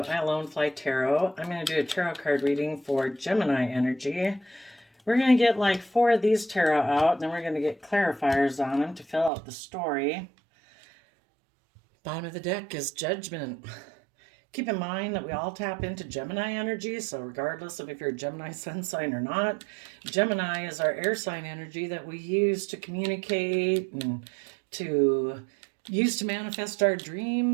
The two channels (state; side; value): drops out; left; at 9.3 s